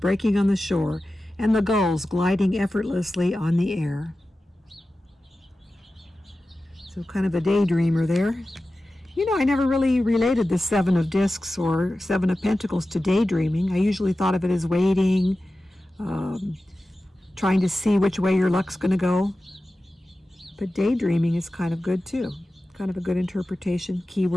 on the shore and the gulls gliding effortlessly on the air. So kind of a daydreamer there. You know, I never really related the 7 of discs or 7 of pentacles to daydreaming. I usually thought of it as waiting, trying to see which way your luck's going to go. But daydreaming is kind of good too. Kind of a good interpretation,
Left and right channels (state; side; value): normal; both; correlation 0.94